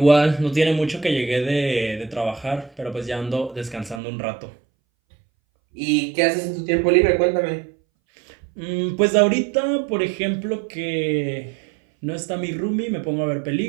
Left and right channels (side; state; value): left; drops out; at 4.0 s